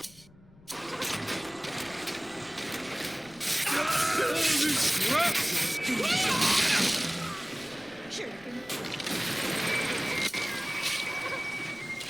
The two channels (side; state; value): left; noise; rumble, 25 dB below the sound